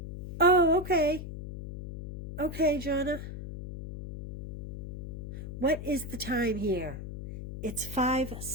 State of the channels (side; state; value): left; noise; hum, 9 dB below the sound